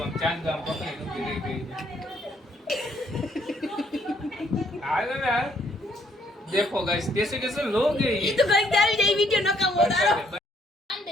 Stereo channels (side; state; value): both; normal; correlation 0.68